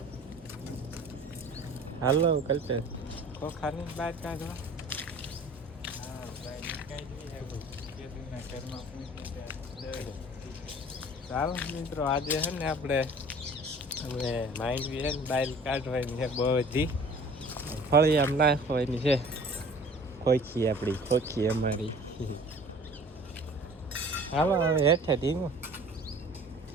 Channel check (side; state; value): both; normal; correlation 0.47